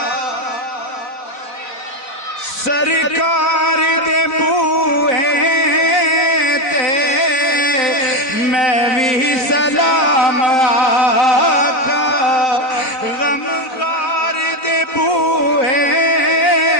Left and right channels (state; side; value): late; right; 3.9 ms